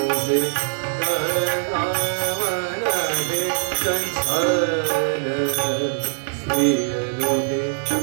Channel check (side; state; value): left; silent; 64 dB below the other